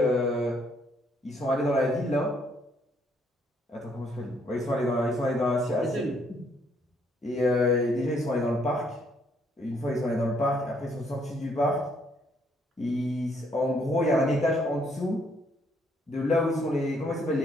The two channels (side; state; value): both; normal; correlation 0.69